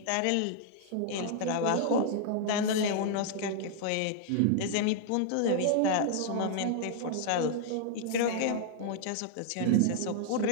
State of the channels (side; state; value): both; different; correlation 0.00